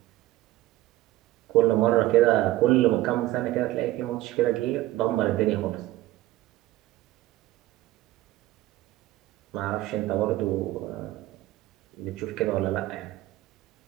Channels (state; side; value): quieter; left; 15.9 dB